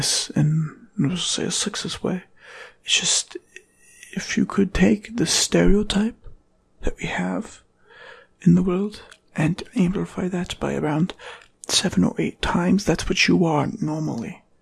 in, let's say, a sexist way. It's just, if you could take the stereotype that we have in the world and amplify that by around 7 or 8 times, that's what you are normally.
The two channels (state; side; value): identical; both; correlation 1.00